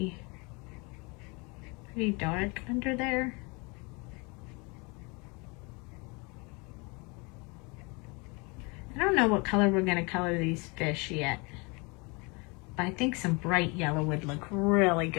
dark under there. I don't know what color we're going to color these fish yet, but I think some bright yellow would look really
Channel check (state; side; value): quieter; right; 29.4 dB